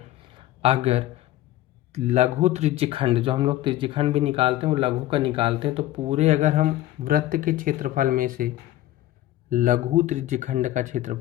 अगर लघु त्रिज्यखंड, जो हम लोग त्रिज्यखंड भी निकालते हैं वो लघु का निकालते हैं, तो पूरे अगर हम वृत्त के क्षेत्रफल में से लघु त्रिज्यखंड का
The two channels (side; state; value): right; quieter; 14.7 dB